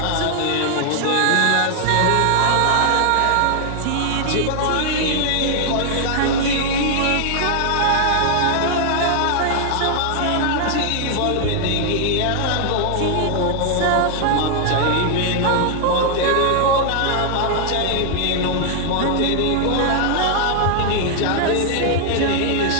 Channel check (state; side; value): different; both; correlation 0.00